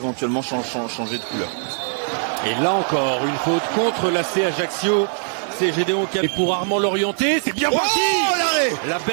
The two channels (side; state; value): left; silent; 65 dB below the other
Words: changer de couleur. Et là encore, une faute contre l'AC Ajaccio. C'est Gédéon qui a... Et pour Armand Lorienté, c'est bien parti. La